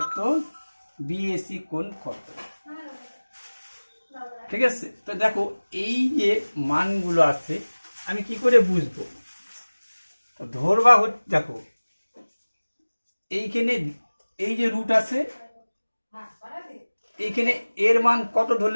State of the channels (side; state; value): both; inverted; correlation -1.00